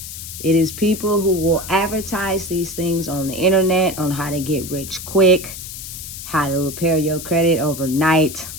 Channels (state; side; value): noise; left; hiss, 10 dB below the sound